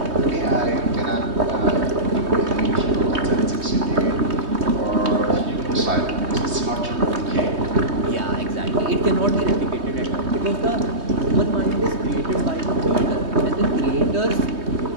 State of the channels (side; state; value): left; late; 3.2 ms